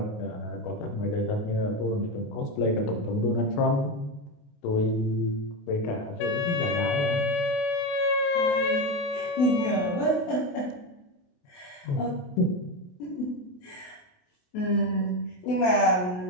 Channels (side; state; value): right; late; 28 ms